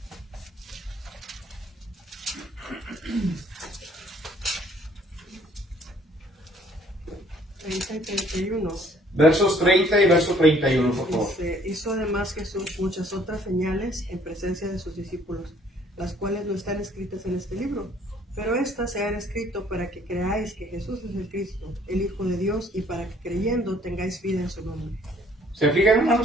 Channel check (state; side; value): normal; both; correlation 0.60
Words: y 31. Versos 30 y verso 31, por favor. Hizo además Jesús muchas otras señales en presencia de sus discípulos, las cuales no están escritas en este libro, pero estas se han escrito para que creáis que Jesús es el Cristo, el Hijo de Dios, y para que creyendo tengáis vida en su nombre. ¿Se fijan,